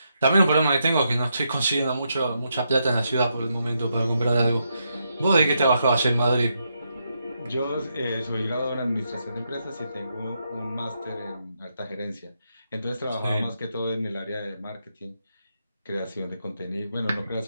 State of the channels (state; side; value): inverted; both; correlation -0.81